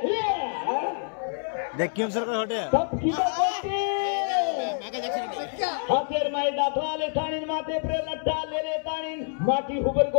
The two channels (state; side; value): silent; right; 60 dB below the other